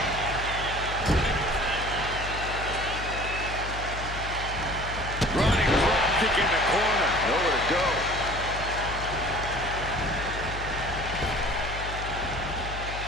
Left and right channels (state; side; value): noise; left; hum, 7 dB below the sound